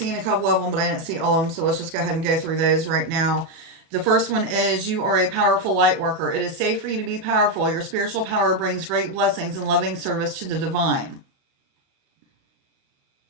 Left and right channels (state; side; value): late; left; 37 ms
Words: a couple of them, but I didn't see all of them. So let's just go ahead and go through those right now. The first one is you are a powerful light worker. It is safe for you to be powerful. Your spiritual power brings great blessings and loving service to the divine.